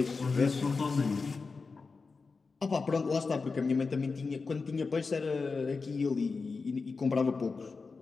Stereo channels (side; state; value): right; quieter; 4.4 dB